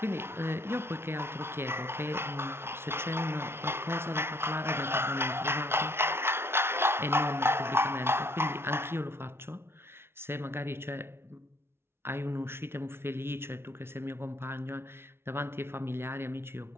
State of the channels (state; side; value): late; left; 0.12 ms